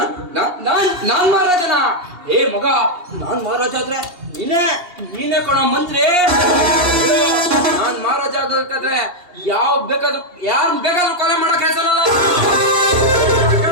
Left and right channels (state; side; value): late; left; 2.8 ms